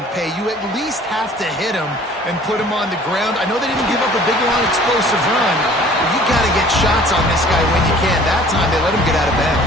pay. You at least have to hit him and put him on the ground. I know they didn't give up a big, long, explosive run, but you got to get shots on this guy when you can. That time, they let him get out of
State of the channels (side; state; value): both; normal; correlation 0.51